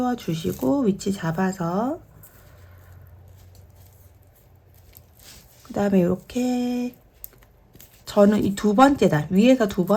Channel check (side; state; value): both; identical; correlation 1.00